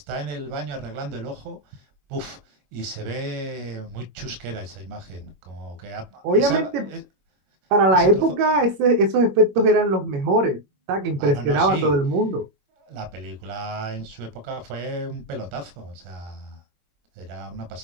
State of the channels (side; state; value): left; late; 22 ms